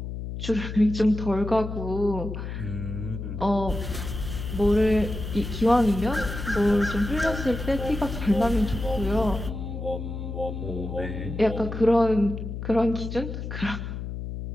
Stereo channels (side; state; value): left; noise; hum, 6 dB below the sound